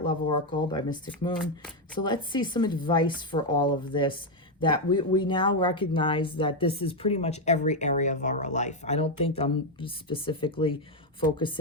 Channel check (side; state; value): both; normal; correlation 0.04